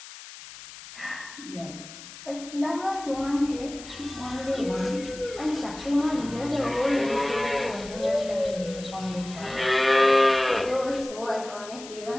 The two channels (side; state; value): left; noise; hiss, 15 dB below the sound